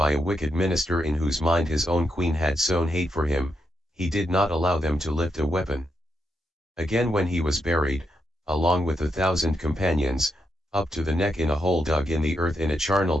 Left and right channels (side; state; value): both; normal; correlation 0.82